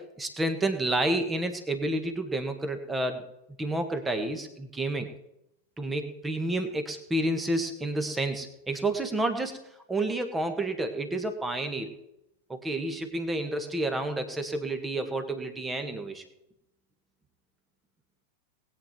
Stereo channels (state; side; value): normal; both; correlation 0.70